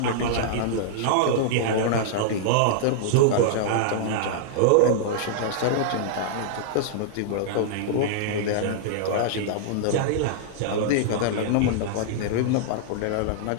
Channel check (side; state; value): both; different; correlation -0.01